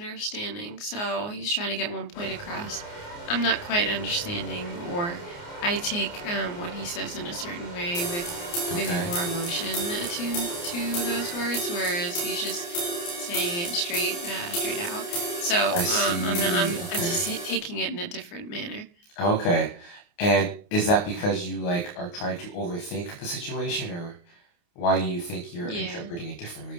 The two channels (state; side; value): late; right; 29 ms